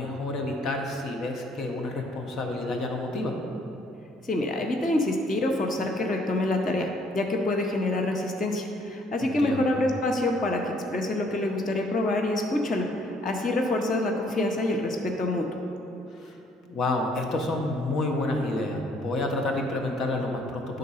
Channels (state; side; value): normal; both; correlation 0.64